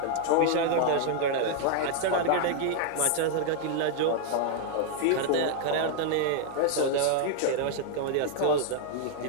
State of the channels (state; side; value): different; both; correlation 0.00